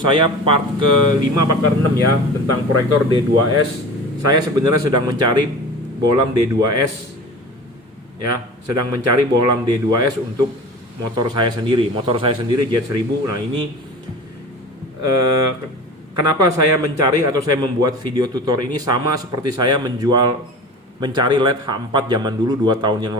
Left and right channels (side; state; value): both; normal; correlation 0.36